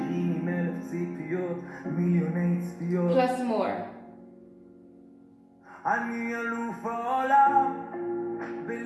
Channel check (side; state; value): both; identical; correlation 1.00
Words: עם 1000 ציפיות, מיליוני צפיות. Plus more. אני אלוף העולם